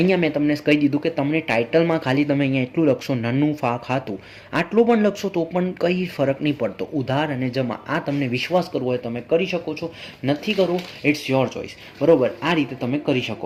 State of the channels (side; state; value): both; identical; correlation 1.00